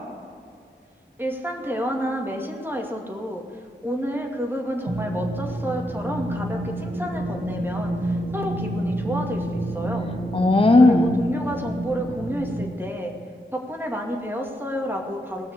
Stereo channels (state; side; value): normal; both; correlation 0.81